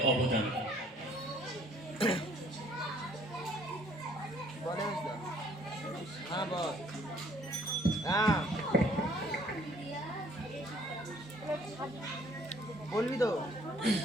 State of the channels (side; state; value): both; normal; correlation 0.59